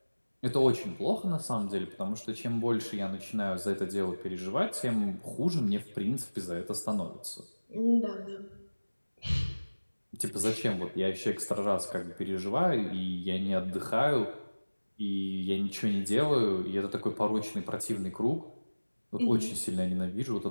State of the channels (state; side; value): inverted; both; correlation -1.00